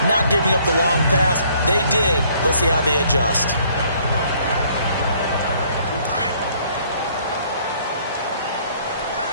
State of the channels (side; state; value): both; inverted; correlation -0.62